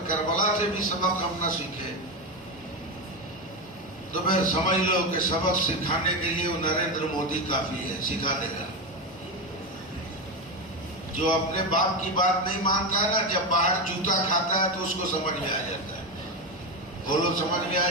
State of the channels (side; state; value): both; normal; correlation 0.14